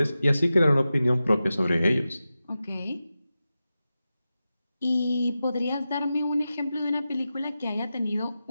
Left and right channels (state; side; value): inverted; both; correlation -0.93